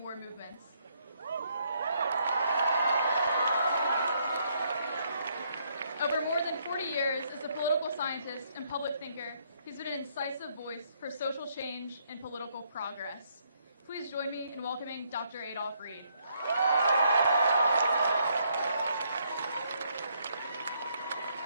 movements. Over more than 40 years as a political scientist and public thinker, he's been an incisive voice for social change and political progress. Please join me in welcoming Dr. Adolph Reed.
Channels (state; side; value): inverted; both; correlation -0.71